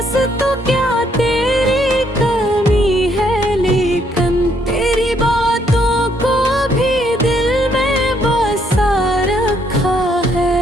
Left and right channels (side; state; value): both; normal; correlation 0.70